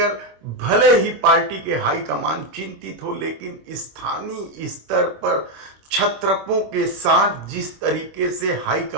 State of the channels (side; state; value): left; late; 26 ms